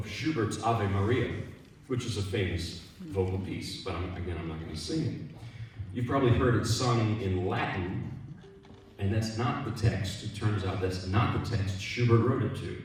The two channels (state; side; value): identical; both; correlation 1.00